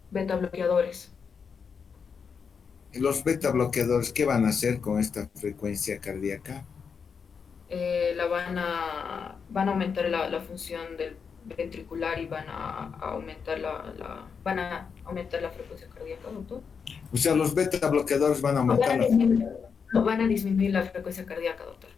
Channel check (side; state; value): right; quieter; 6.1 dB